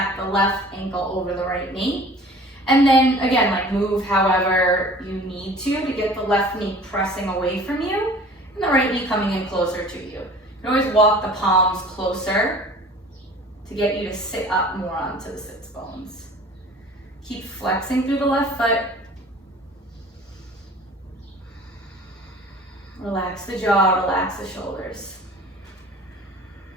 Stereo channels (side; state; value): both; normal; correlation 0.46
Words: the left ankle over the right knee. And then, again, like move however you need to get the left knee pressing away from you, and the right knee coming in closer to you. You can always walk the palms closer to get you to sit up more onto the sits bones. Keep flexing through the left foot. Relax the jaw, relax the shoulders.